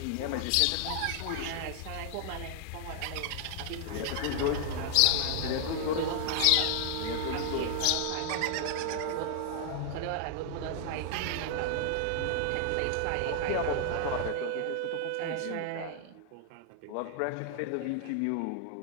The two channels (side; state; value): both; different; correlation 0.00